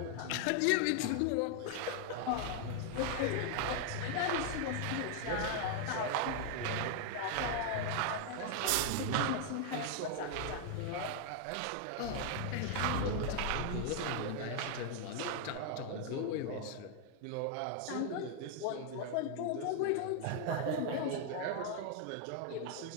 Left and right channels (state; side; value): different; both; correlation 0.00